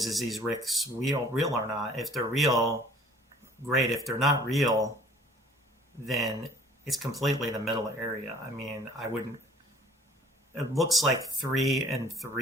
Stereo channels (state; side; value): normal; both; correlation 0.53